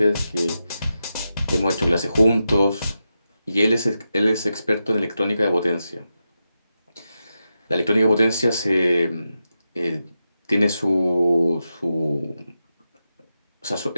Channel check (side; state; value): both; inverted; correlation -0.89